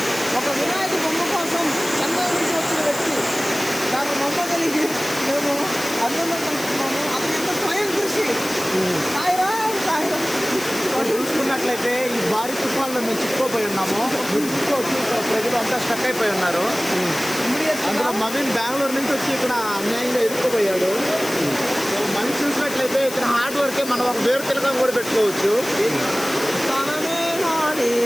ఒక వినాయక బొమ్మ కోసం చెన్నై నుంచి వచ్చిన వ్యక్తి నాకు నమ్మగలిగి మేము అర్థంలో కలుస్తున్నాము. అతని యొక్క స్వయం కృషి. చూసుకున్నట్లయితే ఈ భారీ తుఫాన్లో మేము చిక్కుపోయి ఉన్నాము. ప్రజలు అంతా స్టక్ అయిపోయి ఉన్నారు. అందులో మవీన్ బెంగళూరు నుంచి వచ్చి ఇక్కడ అన్యాయంగా ఇరుక్కుపోయాడు. మనిషి చూసినట్లయితే ఇక్కడ హార్డ్ వర్కే మనం ఒక వేరు తిలకం కూడా పెట్టుకోవచ్చు.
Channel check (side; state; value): left; noise; hiss, 10 dB below the sound